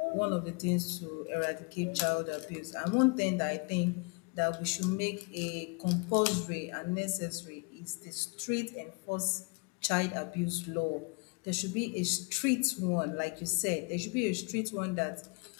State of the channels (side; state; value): right; quieter; 32.6 dB